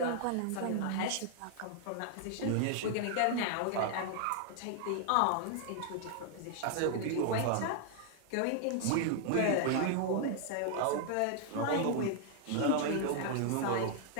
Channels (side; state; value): both; different; correlation 0.00